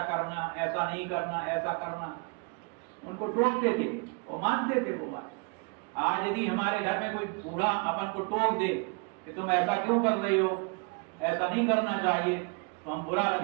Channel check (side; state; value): left; quieter; 32.9 dB